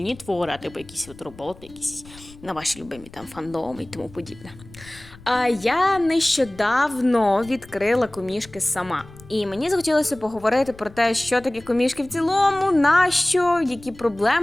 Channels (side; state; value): left; noise; rumble, 21 dB below the sound